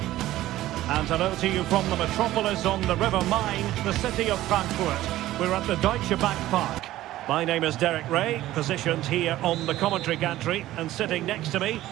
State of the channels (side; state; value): left; quieter; 15.1 dB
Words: And hello to you from the metropolis on the River Main, the city of Frankfurt. We're at the Deutsche Bank Park. My name is Derek Ray, positioned here on the commentary gantry, and sitting next to me,